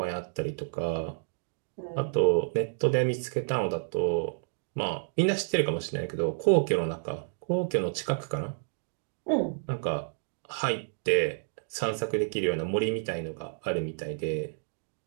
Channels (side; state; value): left; silent; digital silence